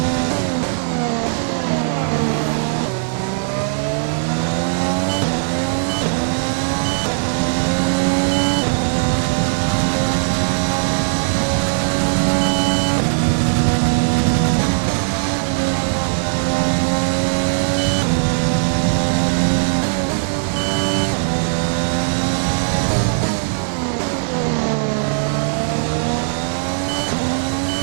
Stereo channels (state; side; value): silent; left; digital silence